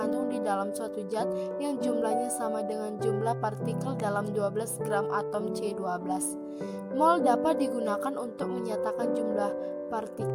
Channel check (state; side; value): identical; both; correlation 1.00